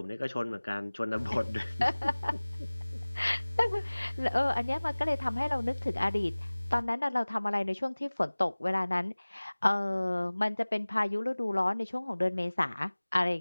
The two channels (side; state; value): both; inverted; correlation -1.00